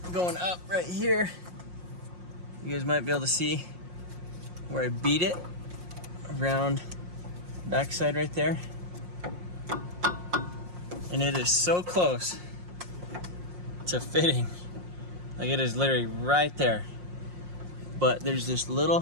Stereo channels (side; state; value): left; late; 5.6 ms